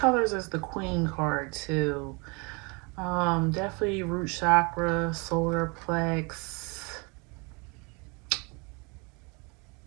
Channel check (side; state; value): left; quieter; 30.2 dB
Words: as the queen card too. Definitely root chakra, solar plex.